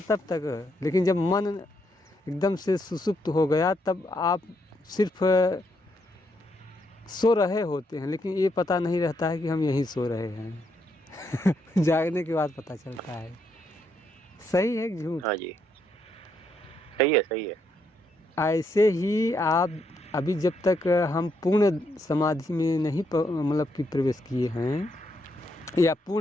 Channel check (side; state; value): both; normal; correlation 0.77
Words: तब तक, लेकिन जब मन एकदम से सुसुप्त हो गया तब आप सिर्फ सो रहे होते हैं, लेकिन ये पता नहीं रहता है कि हम यहीं सो रहे हैं जागने के बाद पता चलता है। सही है कि झूठ? हाँ जी, सही है, सही है। ऐसे ही आप अभी जब तक हम पूर्ण समाधि में नहीं मतलब कि प्रवेश किए हैं या